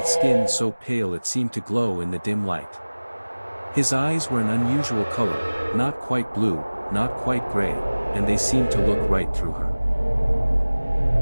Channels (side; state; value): both; inverted; correlation -1.00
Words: skin so pale it seemed to glow in the dim light. His eyes were an unusual color, not quite blue, not quite gray, and they seemed to look right through her.